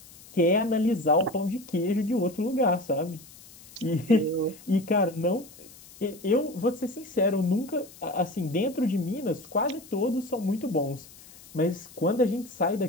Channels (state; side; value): noise; left; hiss, 21 dB below the sound